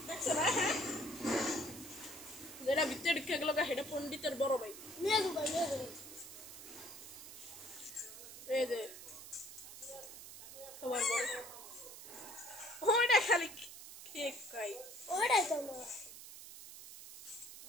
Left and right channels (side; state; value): right; noise; hiss, 13 dB below the sound